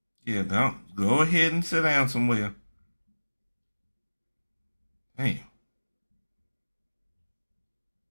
Yeah, don't go ahead and sit down somewhere. Damn.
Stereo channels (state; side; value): inverted; both; correlation -1.00